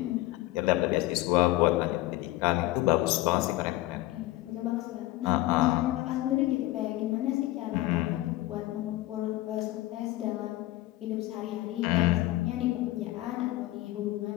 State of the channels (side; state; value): right; quieter; 17.3 dB